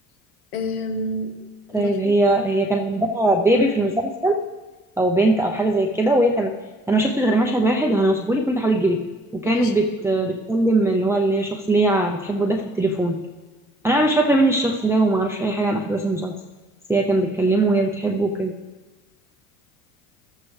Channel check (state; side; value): normal; both; correlation 0.61